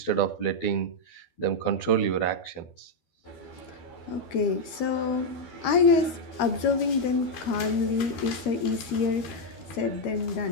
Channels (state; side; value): late; right; 12 ms